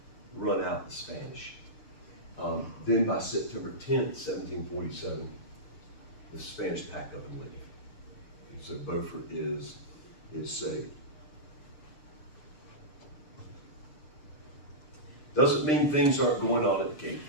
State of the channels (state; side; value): late; right; 6.7 ms